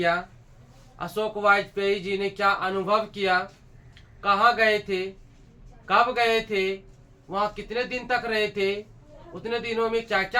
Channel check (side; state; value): both; identical; correlation 1.00